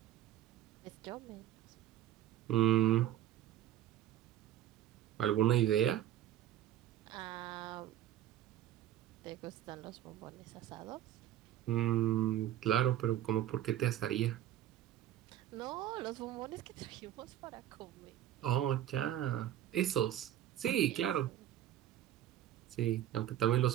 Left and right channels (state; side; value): quieter; left; 12.1 dB